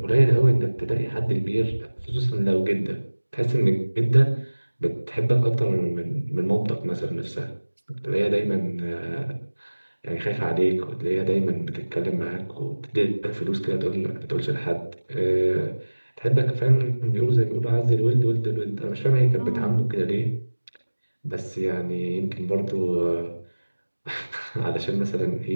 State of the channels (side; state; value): both; inverted; correlation -1.00